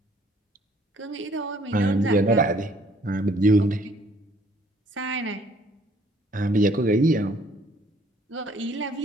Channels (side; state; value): both; normal; correlation 0.61